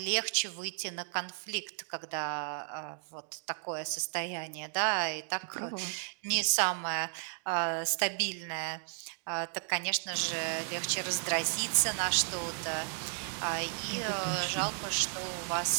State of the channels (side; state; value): left; silent; 55 dB below the other